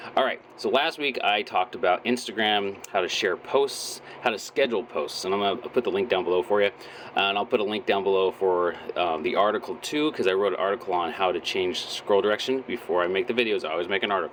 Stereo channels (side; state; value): both; identical; correlation 1.00